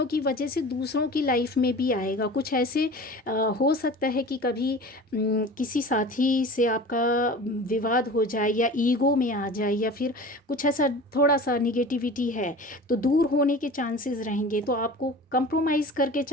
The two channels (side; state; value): both; normal; correlation 0.37